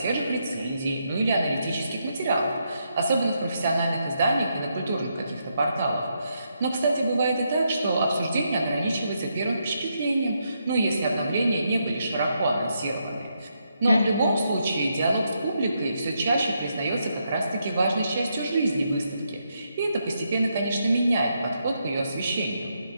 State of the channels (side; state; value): both; inverted; correlation -0.80